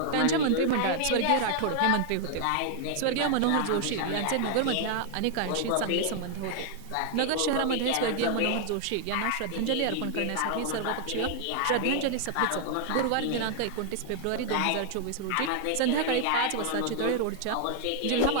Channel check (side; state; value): both; different; correlation 0.00